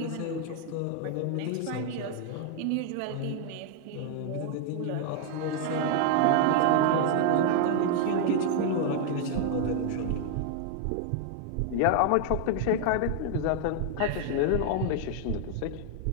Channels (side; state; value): both; different; correlation 0.00